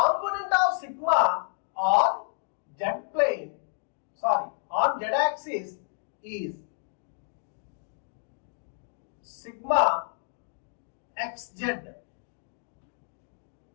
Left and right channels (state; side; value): silent; right; digital silence